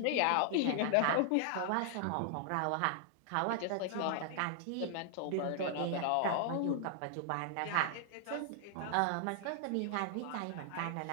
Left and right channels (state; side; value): different; both; correlation 0.00